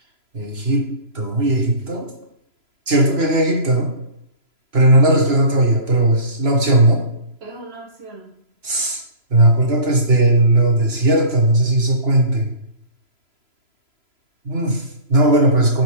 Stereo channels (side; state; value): left; late; 3.0 ms